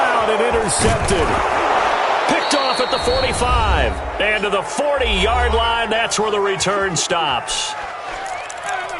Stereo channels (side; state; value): both; identical; correlation 1.00